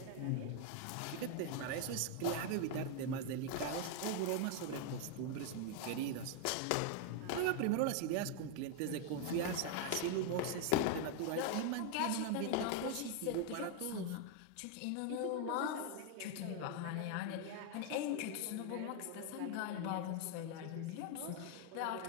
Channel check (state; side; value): different; both; correlation 0.01